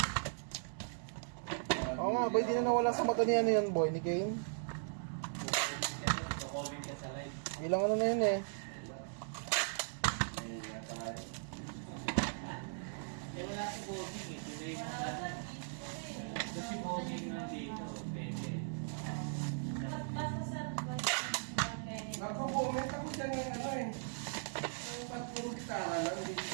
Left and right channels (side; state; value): left; silent; digital silence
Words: Oo nga, boy, di na nawala sa mata ni ano yan, boy, ni Kane. Ilang ano na yun eh. Wala si Bobby eh. Kasi Bobby nandito. Pwede.